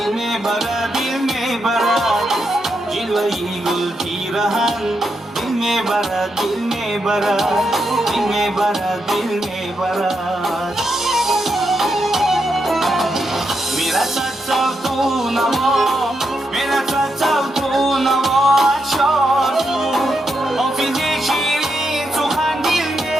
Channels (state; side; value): normal; both; correlation 0.83